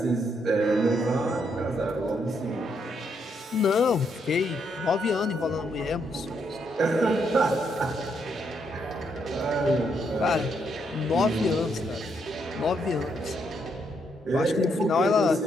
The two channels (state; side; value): normal; both; correlation 0.76